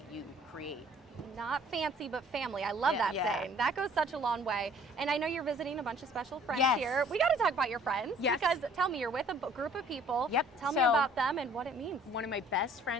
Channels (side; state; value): both; normal; correlation 0.56